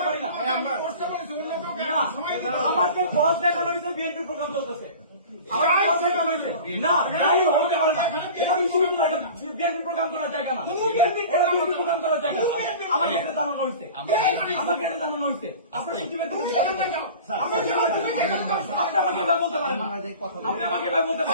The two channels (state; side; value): inverted; both; correlation -0.38